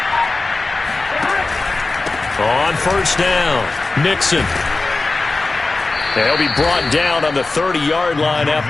On 1st down, Mixon. They'll be brought down on the 30-yard line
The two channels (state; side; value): quieter; right; 3.5 dB